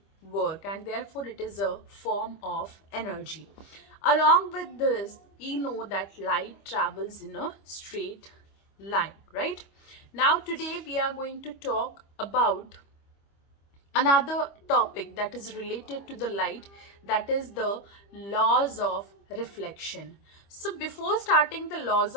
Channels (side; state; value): right; late; 25 ms